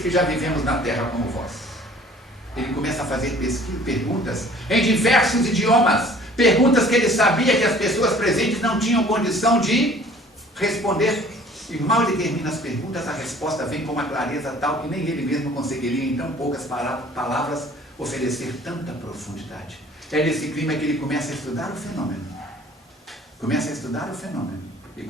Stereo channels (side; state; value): both; normal; correlation 0.52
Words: que já vivemos na terra como vós. Ele começa a fazer perguntas em diversos idiomas, perguntas que ele sabia que as pessoas presentes não tinham condição de responder. E mal ele termina as perguntas, a resposta vem com uma clareza tal que nem ele mesmo conseguiria em tão poucas palavras oferecer tanta profundidade. É nesse clima que ele começa a estudar o fenômeno. E